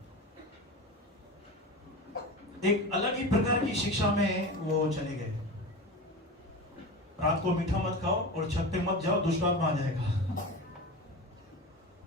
एक अलग ही प्रकार की शिक्षा में वो चले गए। रात को मीठा मत खाओ और छत पे मत जाओ, दुष्ट आत्मा आ जाएगा।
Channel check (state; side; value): normal; both; correlation 0.27